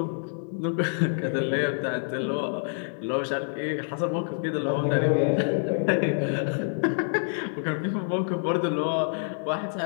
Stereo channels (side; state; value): right; silent; digital silence